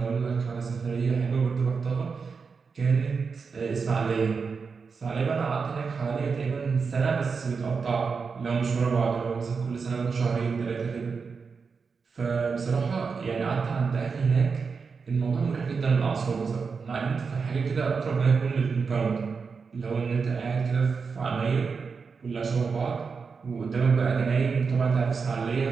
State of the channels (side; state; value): left; quieter; 5.2 dB